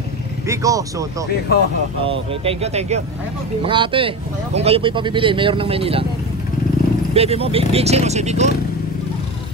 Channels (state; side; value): noise; right; rumble, 25 dB below the sound